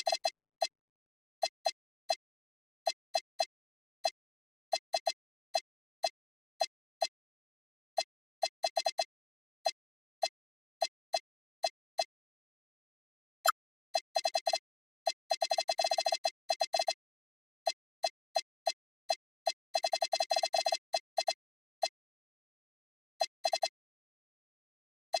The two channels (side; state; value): right; quieter; 4.0 dB